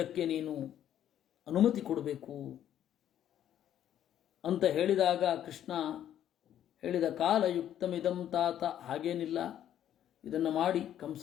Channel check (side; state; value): right; quieter; 10.8 dB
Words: ನೀನು ಅನುಮತಿ ಕೊಡಬೇಕು ಅಂತ ಹೇಳಿದಾಗ ಕೃಷ್ಣ ಹೇಳಿದ, ಕಾಲಯುಕ್ತಮಿದಂ ತಾತ. ಹಾಗೇನಿಲ್ಲ, ಇದನ್ನು ಮಾಡಿ. ಕಂಸ